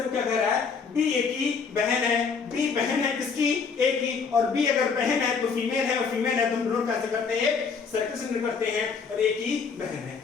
क्या कह रहा है, बी ए की बहन है, बी बहन है किसकी, ए की, और बी अगर बहन है तो फीमेल है, और फीमेल है तो हम डिनोट कैसे करते हैं, सर्किल से डिनोट करते हैं, और ए की बहन है,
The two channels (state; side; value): quieter; right; 5.6 dB